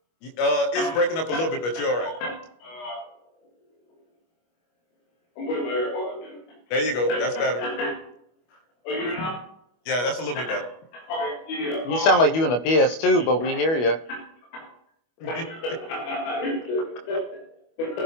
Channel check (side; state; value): right; late; 25 ms